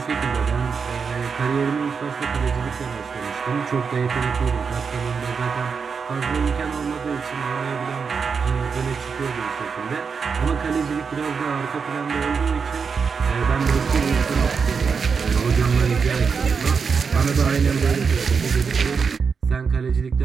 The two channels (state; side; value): quieter; left; 5.7 dB